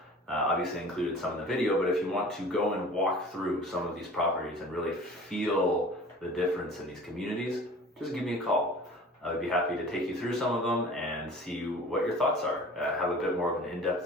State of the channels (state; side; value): normal; both; correlation 0.44